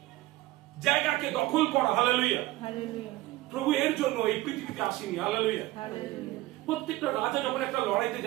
জায়গাকে দখল করা, হালেলুয়া। প্রভু এর জন্য এই পৃথিবীতে আসেনি, হালেলুয়া। প্রত্যেকটা রাজা যখন একটা লড়াইতে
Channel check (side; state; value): left; quieter; 18.0 dB